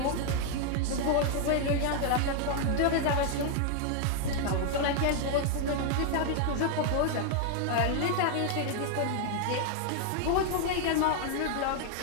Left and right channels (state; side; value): different; both; correlation 0.00